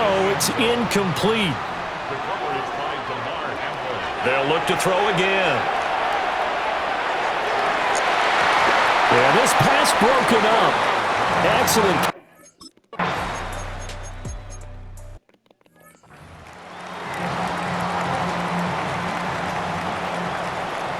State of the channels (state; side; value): identical; both; correlation 1.00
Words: it's incomplete. They'll look to throw again. Yeah, this pass broken up. Excellent.